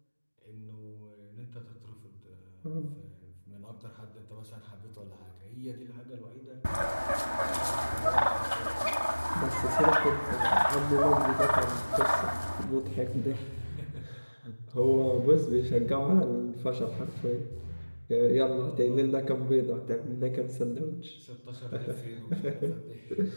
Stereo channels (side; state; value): both; inverted; correlation -1.00